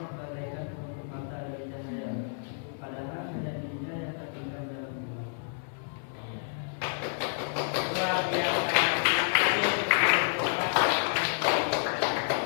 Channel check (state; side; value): silent; right; digital silence